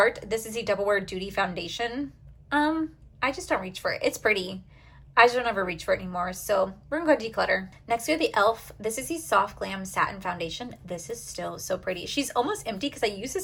This is the Double Wear Duty Foundation. I just don't reach for it. It's pretty. I just don't ever reach for it anymore, so we're gonna go declutter. Next, we have the e.l.f. This is the Soft Glam Satin Foundation. This is still so pretty. She's almost empty because I use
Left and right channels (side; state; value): both; identical; correlation 1.00